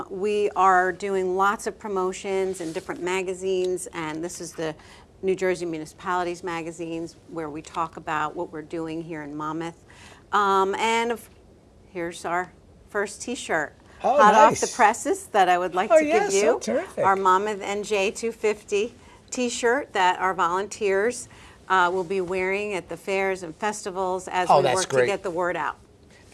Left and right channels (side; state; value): both; identical; correlation 1.00